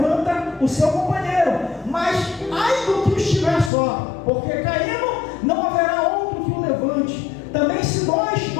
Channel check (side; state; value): right; drops out; at 3.7 s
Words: o seu companheiro. Mas ai do que estiver só, porque caindo não haverá outro que o levante. Também se dois